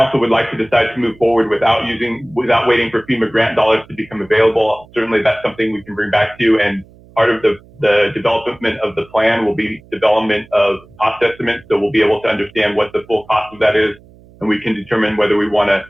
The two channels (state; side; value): noise; right; hum, 25 dB below the sound